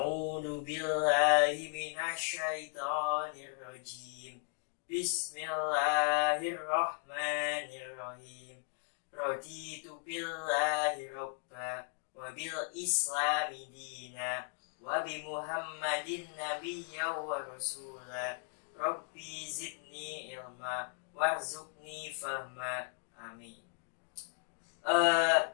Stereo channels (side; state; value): right; silent; 53 dB below the other